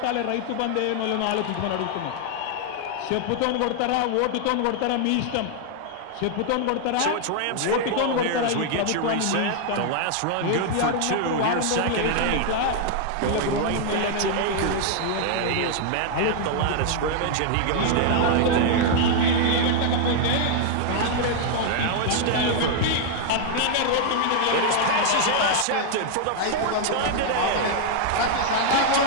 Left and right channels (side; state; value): both; different; correlation 0.00